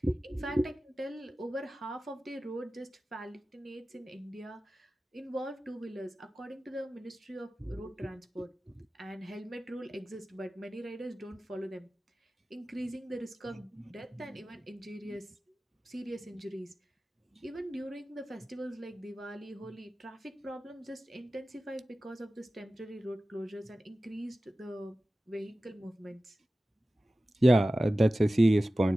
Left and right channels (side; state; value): both; normal; correlation 0.96